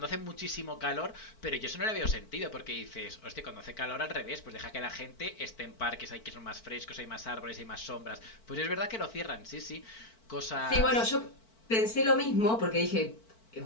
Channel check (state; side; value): late; right; 4.5 ms